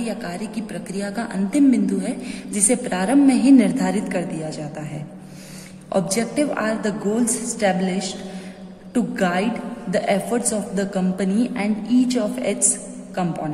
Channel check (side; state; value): both; identical; correlation 1.00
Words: कार्य की प्रक्रिया का अंतिम बिंदु है जिसे प्रारंभ में ही निर्धारित कर दिया जाता है। Objective are the goals established to guide the efforts of the company and each of its